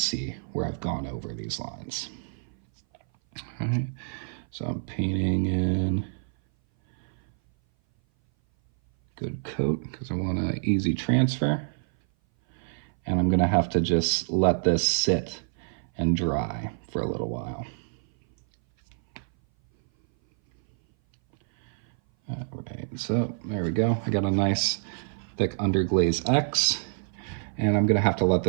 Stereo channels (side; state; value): left; silent; 58 dB below the other